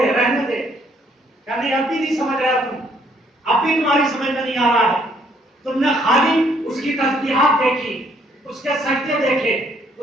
رہنے دے، یعنی اب بھی نہیں سمجھ رہا تم، اب بھی تمہاری سمجھ میں نہیں آ رہا ہے۔ تم نے خالی اس کی تسبیحات دیکھی، اس کے سجدے دیکھے،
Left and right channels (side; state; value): both; normal; correlation 0.66